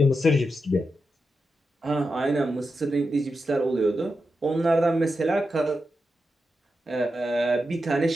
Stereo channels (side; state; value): both; normal; correlation 0.88